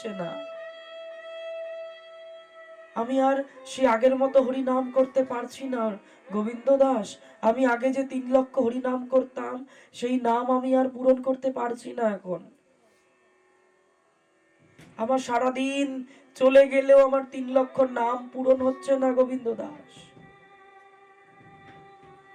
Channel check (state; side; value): identical; both; correlation 1.00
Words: না, আমি আর সে আগের মতো হরি নাম করতে পারছি না। গোবিন্দ দাস, আমি আগে যে 3 লক্ষ হরি নাম করতাম, সেই নাম আমি আর পূরণ করতে পারছি না। এখন আমার সারাদিন চলে গেলেও আমার 3 লক্ষ নাম পূরণ হচ্ছে না গোবিন্দ দাস।